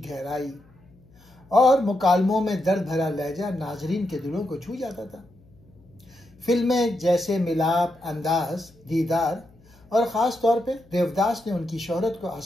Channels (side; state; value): left; noise; hum, 28 dB below the sound